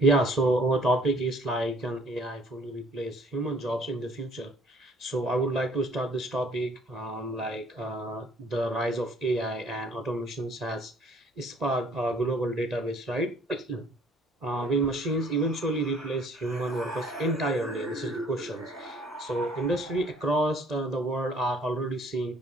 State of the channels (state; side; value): normal; both; correlation 0.57